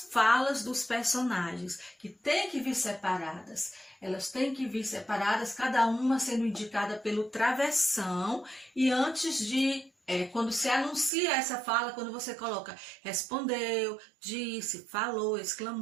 falas dos personagens, que tem que vir separadas. Elas têm que vir separadas, cada uma sendo indicada pelo travessão e antes de quando se anuncia essa fala, quando você coloca respondeu, disse, falou,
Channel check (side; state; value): left; drops out; at 11.1 s